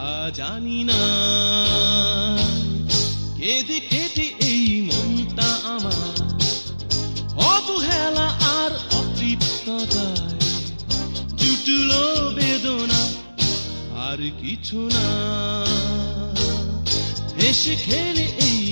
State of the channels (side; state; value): both; inverted; correlation -1.00